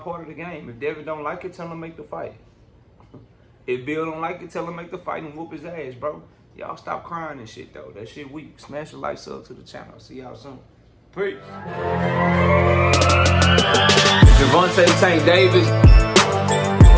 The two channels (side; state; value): both; identical; correlation 1.00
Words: part of the game. If Devin don't like it, tell him make the fight. If Bill don't like it, tell him make the fight and whoop his ass, bro. Y'all stop crying and shit, though. That shit weak. Smash the like, sub to the channel. See y'all soon. Peace. Javante Tank Davis.